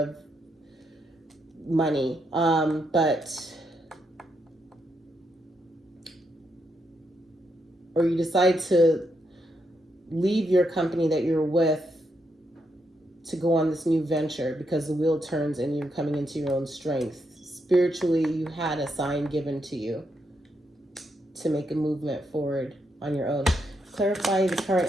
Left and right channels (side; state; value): both; normal; correlation 0.79